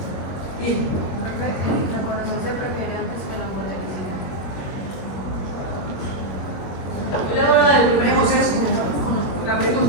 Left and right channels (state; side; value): late; right; 21 ms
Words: Bien. ¿La corazón se prefiere antes que la molecular? Yo le voy a dar el primer José con la